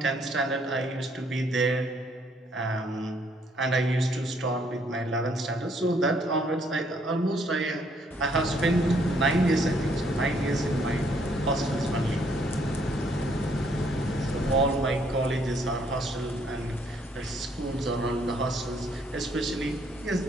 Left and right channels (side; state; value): both; normal; correlation 0.67